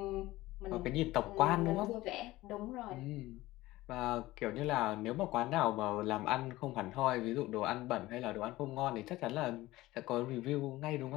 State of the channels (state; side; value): quieter; right; 17.9 dB